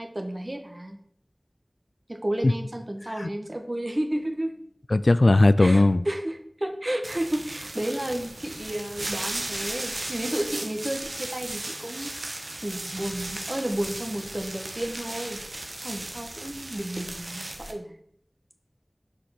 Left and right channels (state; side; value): normal; both; correlation 0.98